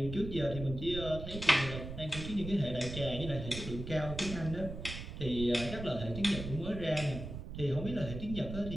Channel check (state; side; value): noise; right; rumble, 8 dB below the sound